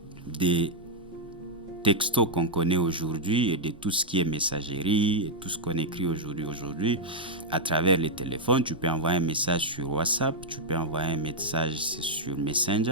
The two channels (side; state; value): both; normal; correlation -0.03